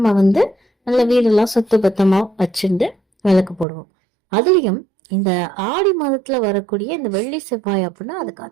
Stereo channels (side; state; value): left; drops out; at 3.7 s